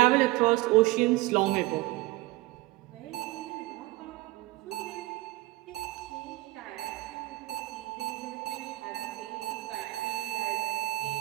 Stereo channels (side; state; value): left; quieter; 19.3 dB